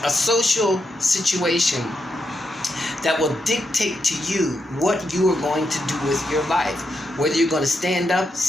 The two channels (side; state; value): both; normal; correlation 0.83